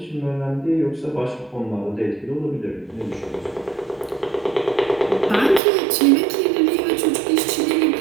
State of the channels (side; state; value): left; drops out; at 5.6 s